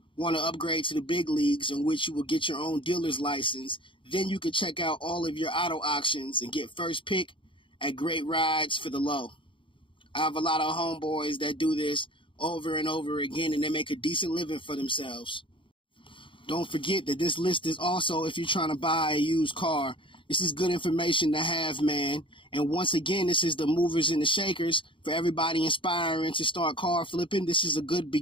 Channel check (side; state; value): right; late; 0.25 ms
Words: want to upgrade to the big leagues, in which you will get your own dealer's license. Then you can check out all of your auto auctions and get first pick at great rides for the low. I have a lot of homeboys that do this over and over again, and they make a decent living for themselves. Don't forget that this list is also if you're trying to buy a used car. This is good information to have, man. And once again, this is the movers and the shakers for everybody inspiring to start car flipping. This is a good